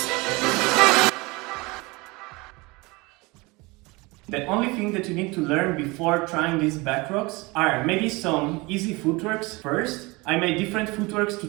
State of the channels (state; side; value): quieter; left; 24.5 dB